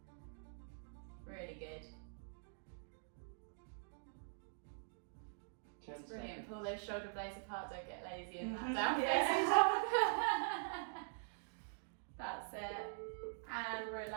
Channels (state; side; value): silent; left; digital silence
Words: Really good. 10 It's brilliant. seconds. Pull those shoulder blades apart, don't get lazy in that Mhm. down facing dog. That's it. And